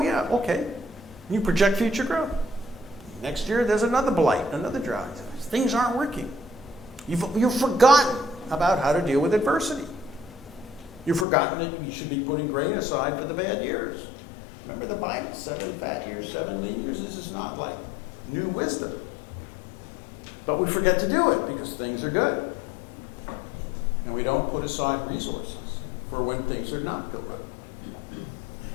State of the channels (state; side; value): drops out; right; at 11.2 s